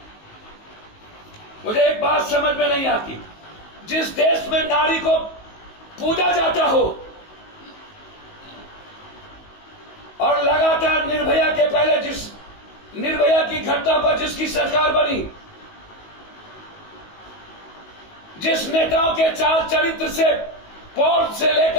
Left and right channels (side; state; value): right; late; 19 ms